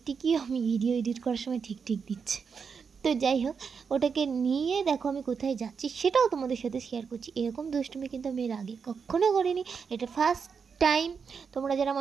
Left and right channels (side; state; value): left; quieter; 6.0 dB